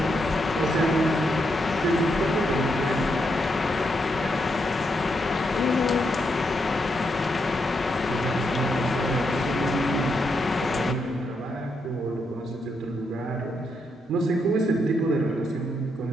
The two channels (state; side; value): normal; both; correlation 0.80